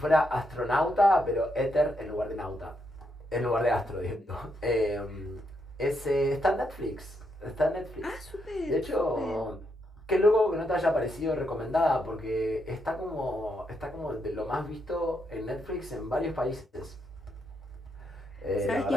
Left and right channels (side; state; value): both; normal; correlation 0.79